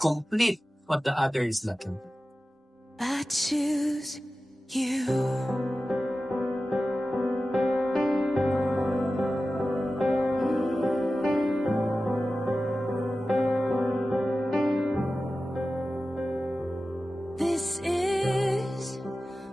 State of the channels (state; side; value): normal; both; correlation 0.94